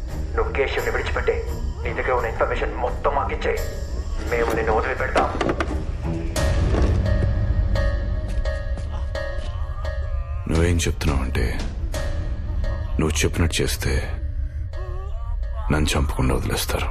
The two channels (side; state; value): both; identical; correlation 1.00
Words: నువ్వు కేశవ్ని విడిచిపెట్టే, నీ దగ్గర ఉన్న ఇన్ఫర్మేషన్ మొత్తం మాకిచ్చే, మేము నిన్ను వదిలిపెడతాం. నువ్వేం చెప్తున్నావంటే నువ్వు చెప్పినట్టు చేస్తే నన్ను చంపకుండా వదిలేస్తారు,